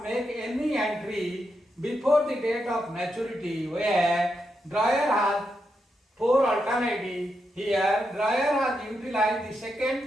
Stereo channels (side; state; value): both; normal; correlation 0.84